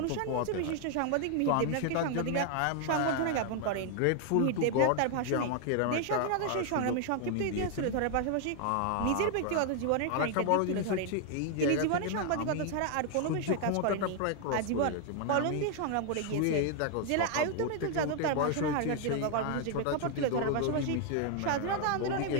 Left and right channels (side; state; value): both; different; correlation 0.00